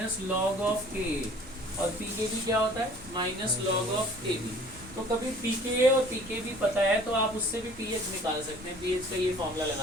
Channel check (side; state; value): both; normal; correlation 0.51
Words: log of Ka और pKb क्या होता है, माइनस लॉग ऑफ Kb। तो कभी pKa और pKb पता है तो आप उससे भी pH निकाल सकते हैं। pH का ये फॉर्मूला